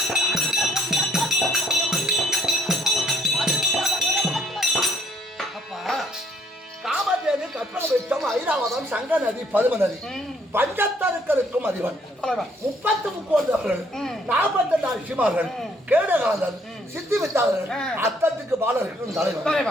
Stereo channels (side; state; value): both; normal; correlation 0.66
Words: காமதேவி கற்பகம் ஐராவதம் சங்க நதி பதும நதி பஞ்சத்தருக்களுக்கும் அதிபன் 33 48 ரிஷிமார்கள் கேடகாந்தன் சித்தி வித்தாளர்கள் அத்தத்துக்கு பாலர்கள்